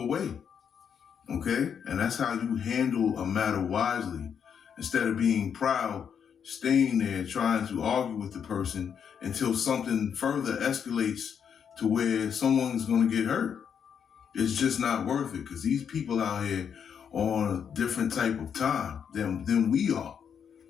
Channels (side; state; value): right; quieter; 7.6 dB